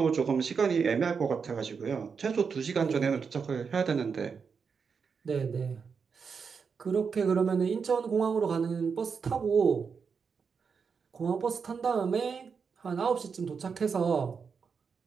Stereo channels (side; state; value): left; quieter; 5.8 dB